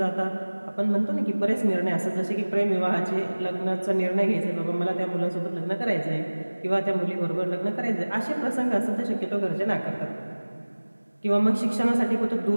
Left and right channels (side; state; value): both; inverted; correlation -1.00